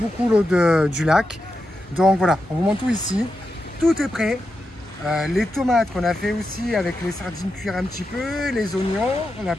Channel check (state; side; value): normal; both; correlation 0.88